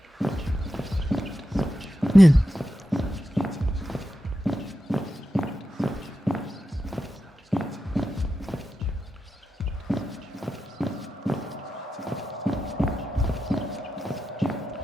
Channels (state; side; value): normal; both; correlation 0.89